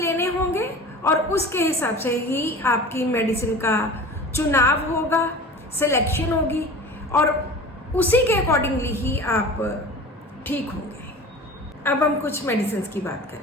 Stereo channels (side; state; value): both; normal; correlation 0.38